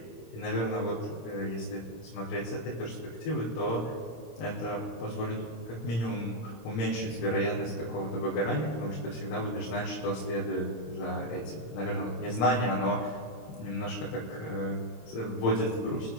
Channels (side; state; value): right; late; 26 ms